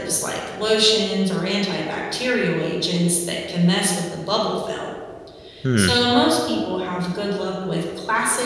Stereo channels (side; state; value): both; identical; correlation 1.00